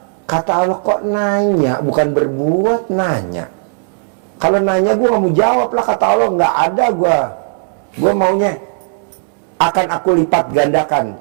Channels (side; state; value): left; silent; digital silence